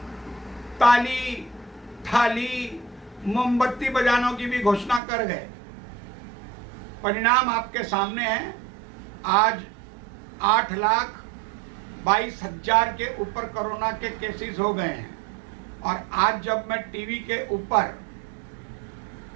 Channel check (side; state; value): left; drops out; at 5.0 s